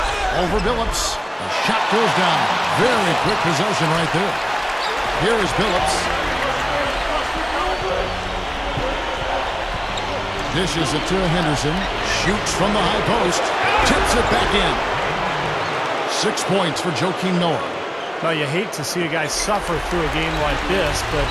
Over Billups. The shot goes down. Very quick possession right there. Here is Billups. Dishes it to Henderson. Shoots from the high post. Tips it back in. 6 points for Joakim Noah. Well, you hate to see a guy suffer through a game like this, but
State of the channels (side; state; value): both; identical; correlation 1.00